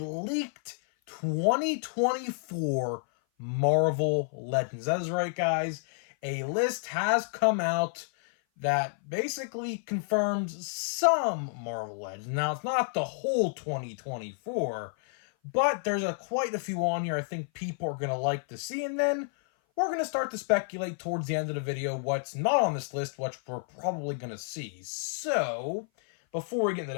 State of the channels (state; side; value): silent; right; 56 dB below the other